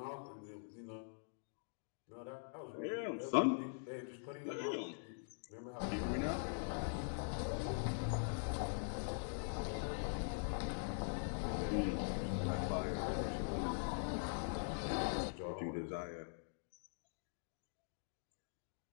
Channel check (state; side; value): silent; right; digital silence